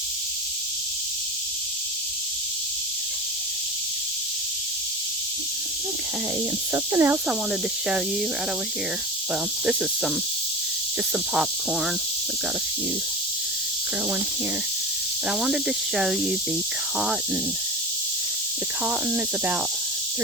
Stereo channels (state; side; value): normal; both; correlation 0.29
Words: Okay, and something else I wanted to show you right over here. Well, this is just some popcorn. We've got a few growing here. But I wanted to show you the cotton. The cotton is about